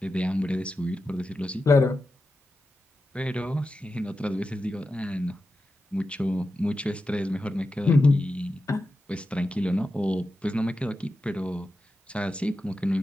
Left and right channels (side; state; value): both; normal; correlation 0.91